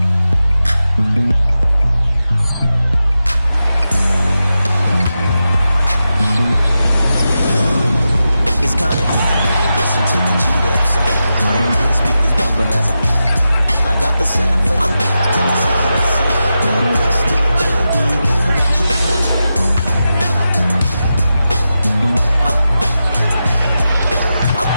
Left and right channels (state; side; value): inverted; both; correlation -0.90